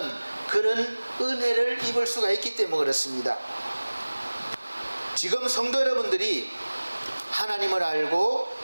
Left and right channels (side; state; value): both; inverted; correlation -1.00